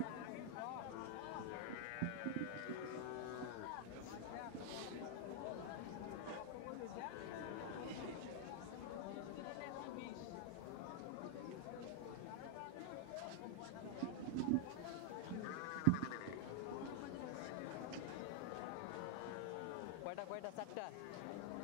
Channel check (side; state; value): both; different; correlation 0.00